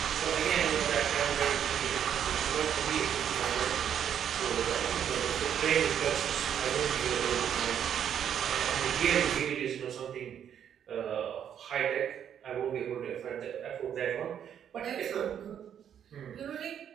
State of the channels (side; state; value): left; quieter; 9.0 dB